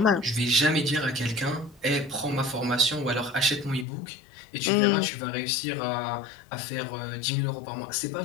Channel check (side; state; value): right; drops out; at 3.9 s